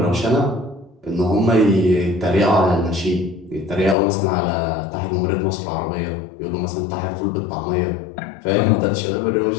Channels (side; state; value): right; drops out; at 4.0 s